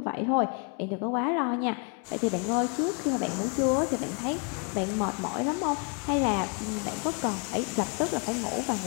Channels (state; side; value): quieter; right; 36.2 dB